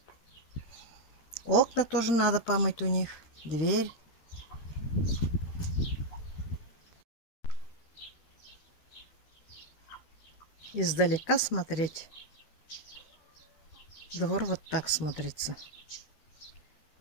Окна тоже надо помыть у них. Дверь. Издалека смотреть. Двор вот так смотрится.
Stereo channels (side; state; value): right; late; 13 ms